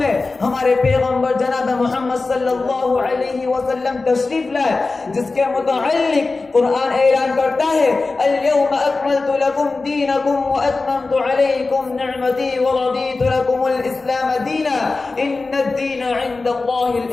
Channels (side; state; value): right; quieter; 3.7 dB